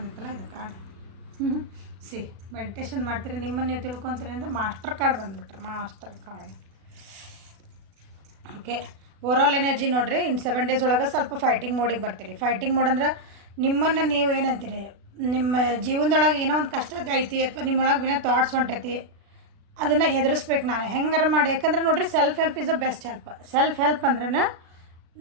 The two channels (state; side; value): late; left; 36 ms